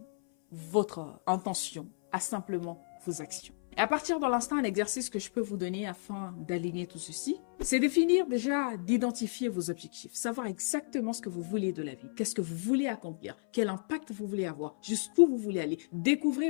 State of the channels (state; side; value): silent; right; 56 dB below the other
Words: votre intention à simplement vos actions. Et à partir de l'instant, un exercice que je peux vous donner afin d'aligner tout ceci, c'est définir déjà, d'identifier vos objectifs, savoir exactement ce que vous voulez de la vie, qu'est-ce que vous voulez accomplir, quel impact vous voulez avoir, jusqu'où vous voulez aller. Découvrez